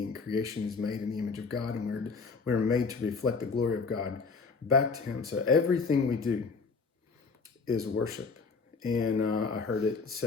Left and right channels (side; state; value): right; quieter; 4.7 dB